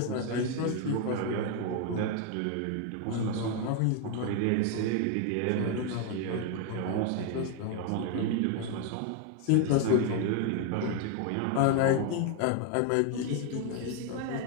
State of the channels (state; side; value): different; both; correlation 0.01